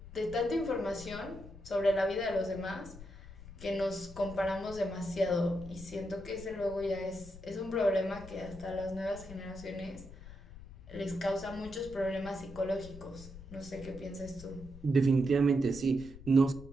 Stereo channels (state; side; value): noise; left; rumble, 15 dB below the sound